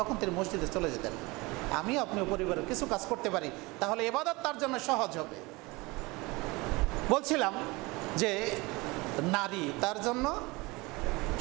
তিনি মসজিদে চলে যেতেন। আমিও আপনিও পরিবারের কিছু কাজ করতে পারি, তাহলে ইবাদত তার জন্য সহজ হবে। বলছিলাম যে নারী, তার জন্য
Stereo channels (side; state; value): left; quieter; 23.9 dB